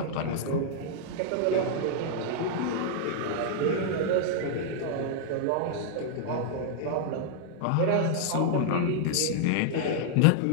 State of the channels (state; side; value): different; both; correlation -0.01